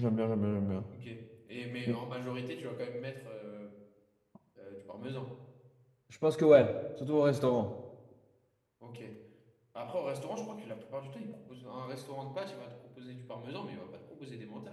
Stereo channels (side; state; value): both; identical; correlation 1.00